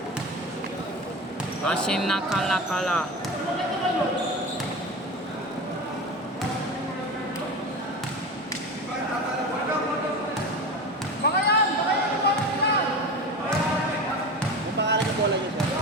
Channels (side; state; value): both; normal; correlation 0.27